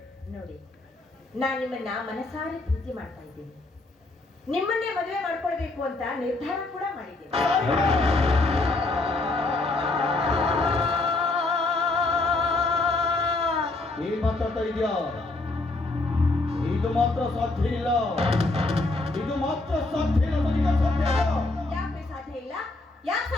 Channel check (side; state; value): right; quieter; 3.1 dB